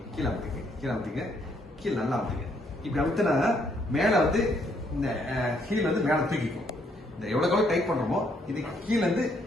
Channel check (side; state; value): both; normal; correlation 0.70